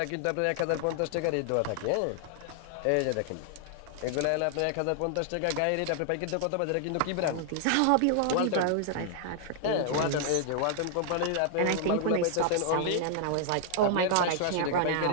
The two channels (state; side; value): different; both; correlation 0.00